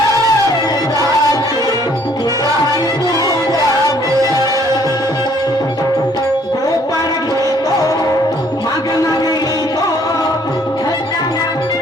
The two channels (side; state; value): both; normal; correlation 0.62